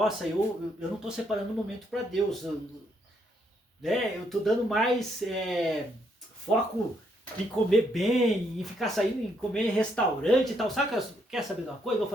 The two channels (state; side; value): normal; both; correlation 0.74